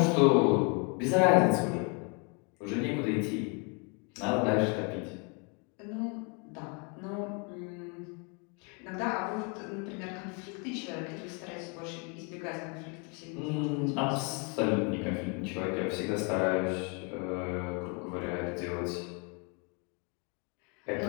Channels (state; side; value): quieter; right; 34.6 dB